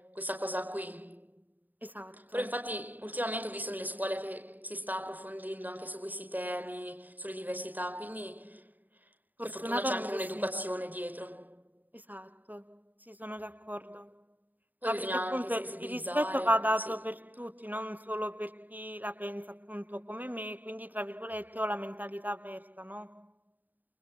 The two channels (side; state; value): left; late; 0.086 ms